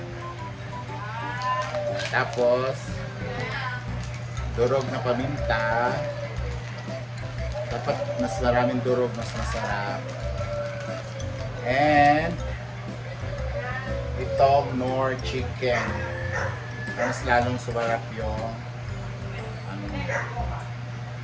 Tapos durog na paminta. Dapat mas maraming durog, mas masarap. And itong Knorr chicken. Mas lalong sumarap yung ano,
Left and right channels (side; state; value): both; identical; correlation 1.00